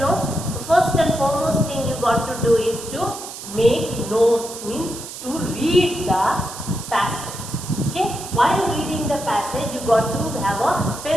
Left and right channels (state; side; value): noise; right; hiss, 11 dB below the sound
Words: The first and foremost thing you got to do is to make notes, means to read the passage. Okay, while reading the passage you got to have a